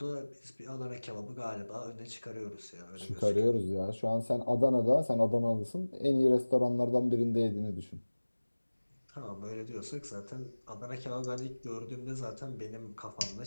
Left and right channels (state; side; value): inverted; both; correlation -1.00